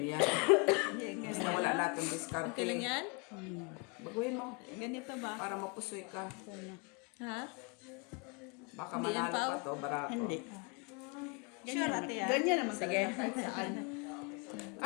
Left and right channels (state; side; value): quieter; right; 31.5 dB